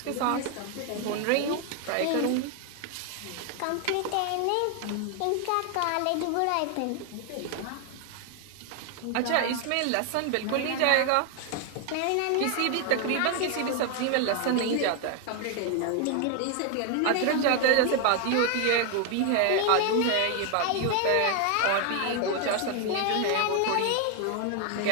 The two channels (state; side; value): different; both; correlation 0.01